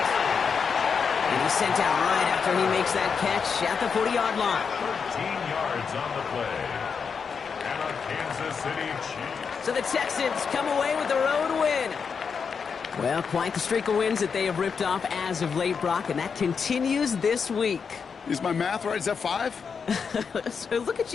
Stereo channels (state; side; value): quieter; right; 6.0 dB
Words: And he's sent out right after he makes that catch at the 40-yard line. 13 yards on the play. And a Kansas City Chiefs. So the Texans come away with the road win. Well, quite the streak of wins that they have ripped off as of late, Brock, and that continues this week. Is my math right? Is that 5? So look at